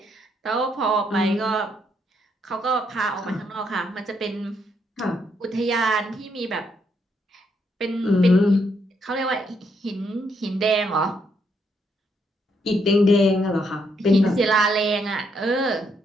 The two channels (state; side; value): normal; both; correlation 0.75